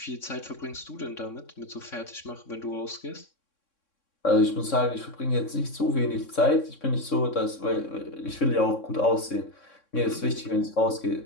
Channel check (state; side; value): late; right; 3.6 ms